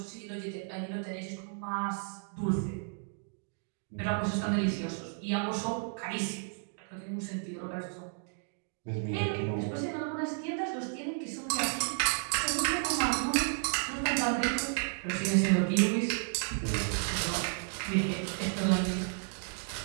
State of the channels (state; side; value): silent; left; 56 dB below the other